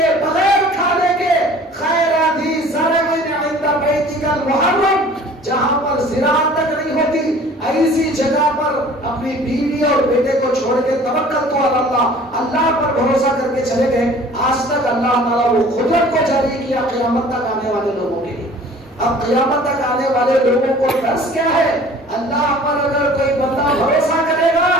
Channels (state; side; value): normal; both; correlation 0.48